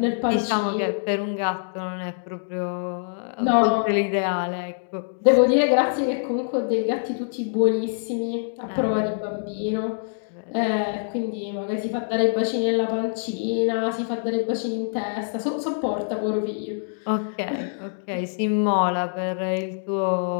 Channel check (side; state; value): right; silent; digital silence